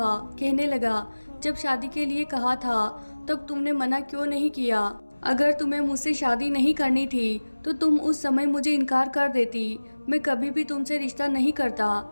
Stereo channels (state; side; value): inverted; both; correlation -1.00